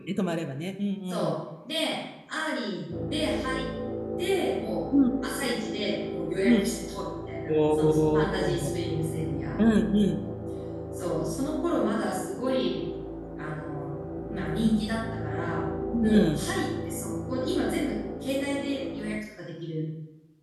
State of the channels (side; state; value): both; identical; correlation 1.00